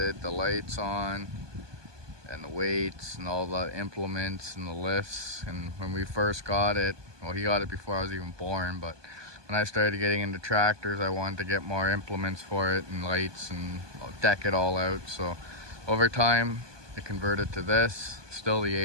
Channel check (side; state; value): left; late; 1.2 ms